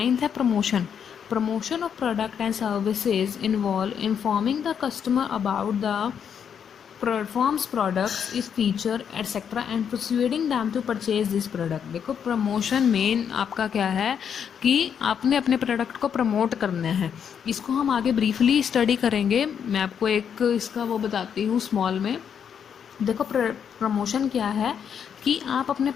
है promotion. Promotion of product and services involve informing the customer about the performs products its feature etcetera and persuading them to purchase this product. देखो प्रमोशन मेन आपका क्या है कि आपने अपने प्रोडक्ट को प्रमोट करना है। इसको हम आगे ब्रीफली स्टडी करेंगे, मैं आपको एक इसका वो बताती हूँ स्मॉल में। देखो प्रमोशन क्या है कि आप अपने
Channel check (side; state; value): right; quieter; 7.8 dB